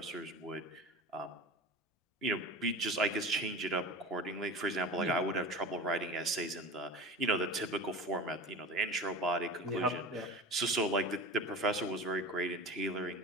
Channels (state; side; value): normal; both; correlation 0.33